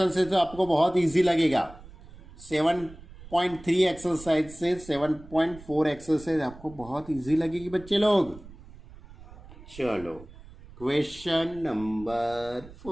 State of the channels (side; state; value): right; noise; rumble, 19 dB below the sound